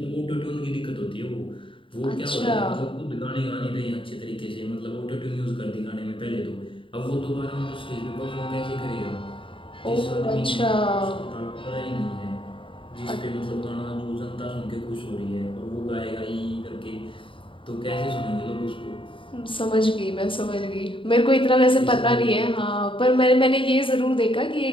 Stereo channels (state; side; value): late; right; 0.25 ms